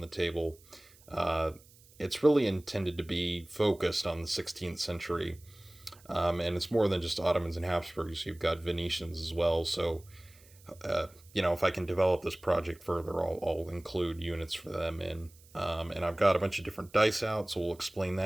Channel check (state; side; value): noise; right; hiss, 26 dB below the sound